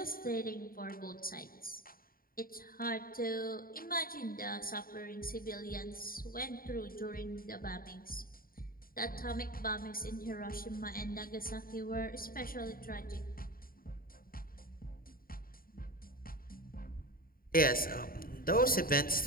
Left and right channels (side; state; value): right; late; 0.42 ms